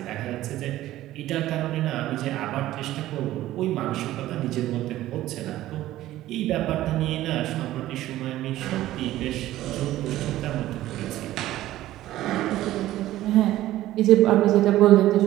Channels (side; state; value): left; quieter; 14.8 dB